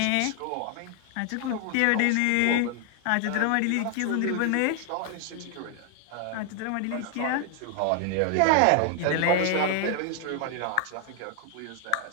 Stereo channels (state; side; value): different; both; correlation 0.00